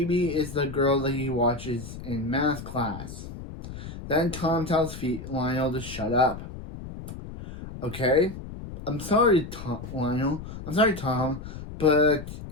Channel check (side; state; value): left; noise; rumble, 11 dB below the sound